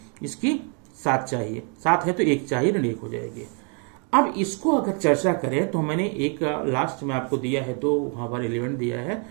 इसकी 7 चाहिए, 7 है तो 1 चाहिए, ऋण 1 हो जाएगी। अब इसको अगर चर्चा करें तो मैंने एक लास्ट में आपको दिया है, 2 वहां पर एलिमेंट दिया है।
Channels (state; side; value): quieter; left; 38.4 dB